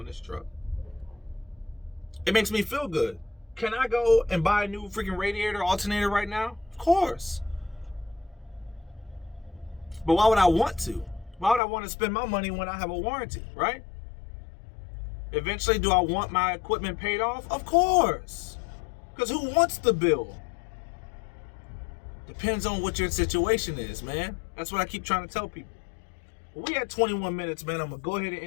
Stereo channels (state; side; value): drops out; right; at 11.6 s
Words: this truck. It makes me feel good. Can I go and buy a new freaking radiator alternator right now? Of course. But why would I want to? Why would I want to spend my money when I have a warranty, right? Eventually, do I want my equipment paid off? Of course. Because who wants the bill? Depends on what your situation is, man. That's what I keep trying to tell people. We had 21 minutes, man. I'm going to go ahead and